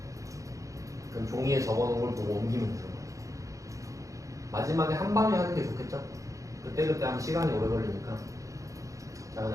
그럼 종이에 적어 놓은 걸 보고 옮기면 되는 거예요. 마지막에 한 방에 하는 게 좋겠죠? 그때그때 하면 시간이 오래 걸리니까. 자,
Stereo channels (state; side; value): late; left; 0.16 ms